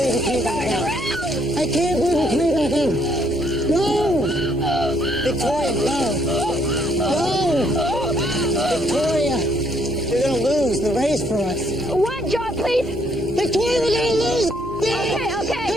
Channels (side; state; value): both; normal; correlation 0.69